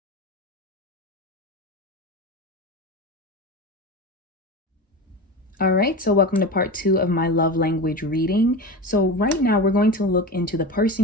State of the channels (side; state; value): both; normal; correlation 0.25